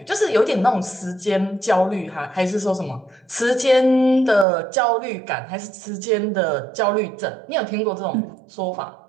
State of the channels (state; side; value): drops out; left; at 4.5 s